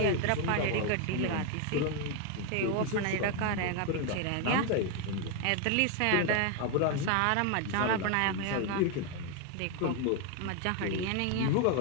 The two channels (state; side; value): different; both; correlation 0.01